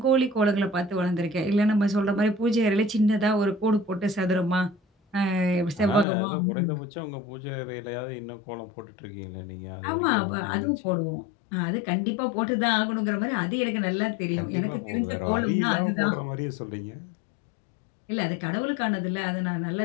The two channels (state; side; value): drops out; right; at 6.1 s